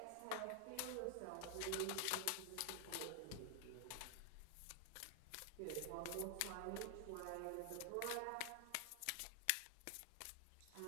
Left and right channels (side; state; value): both; different; correlation 0.00